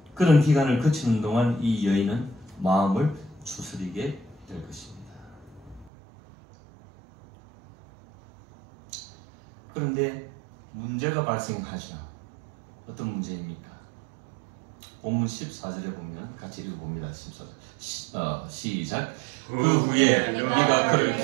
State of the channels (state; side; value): drops out; left; at 5.9 s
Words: 그런 기간을 거치는 동안 이 여인은 마음을 추스리게 될 것입니다. 그런데 문제가 발생하죠. 어떤 문제입니까? 본문 14절에 보면 같이 읽어봅니다. 14절 시작. 그 후에 네가 그를